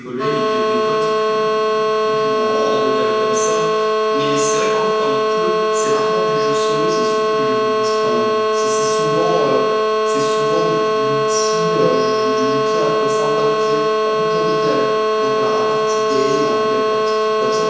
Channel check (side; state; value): both; identical; correlation 1.00